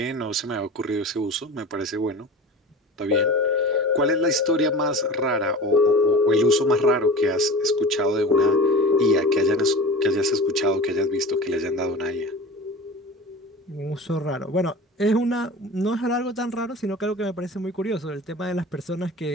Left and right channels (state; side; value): normal; both; correlation 0.35